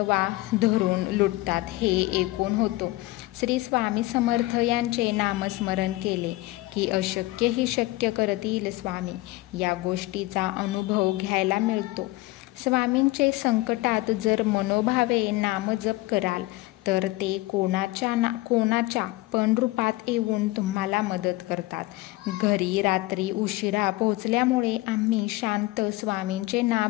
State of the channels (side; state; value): right; quieter; 19.6 dB